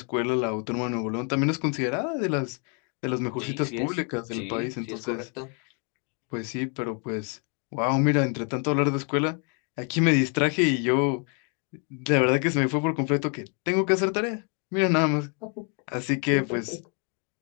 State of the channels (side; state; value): right; quieter; 38.6 dB